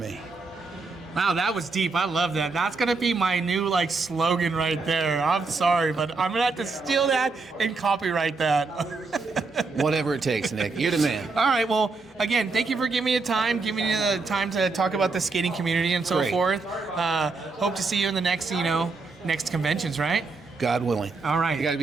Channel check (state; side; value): quieter; left; 4.0 dB